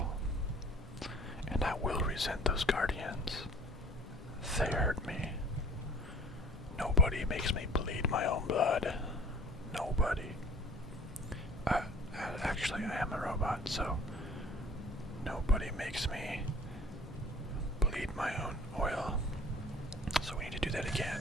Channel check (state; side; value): normal; both; correlation 0.48